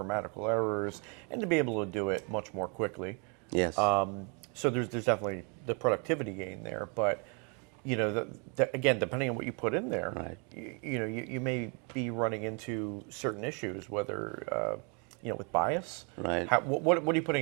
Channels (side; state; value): left; quieter; 35.5 dB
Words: errors, and to be able to do it much more quickly. Yes. So there's definitely the productivity gain there, but again, depending on what you put in there, Right. you may be running into certain issues, whether with bias. Right. What are you